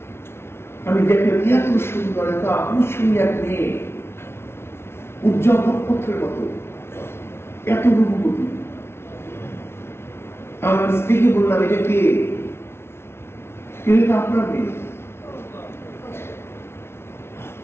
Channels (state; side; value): late; right; 0.12 ms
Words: আমি দেখলাম এত সুন্দর, এত আকর্ষণীয় এক মেয়ে, উজ্জ্বল নক্ষত্রের মতো, এত রূপবতী। আমার স্ত্রীকে বললাম, এটা কে? এটা আপনার মেয়ে।